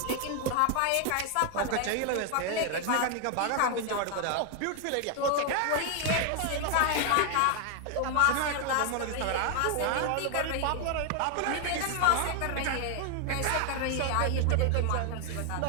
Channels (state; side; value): different; both; correlation 0.00